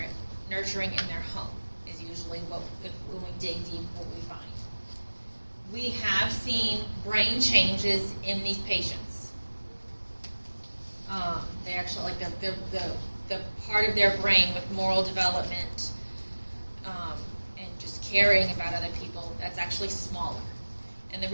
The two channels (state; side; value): inverted; both; correlation -1.00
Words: in their home is usually when we dig deep what we find. We have seen brain changes in these patients. They actually, like the part of their brain with moral development and just caring about other people, that's actually smaller. And the